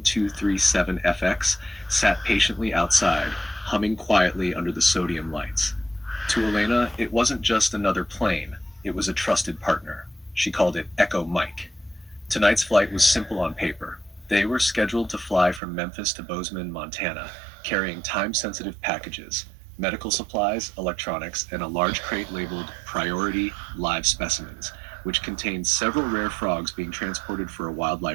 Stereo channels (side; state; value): left; drops out; at 15.6 s